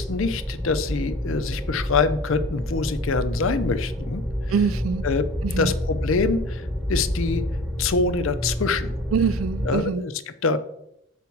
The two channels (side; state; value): both; normal; correlation 0.38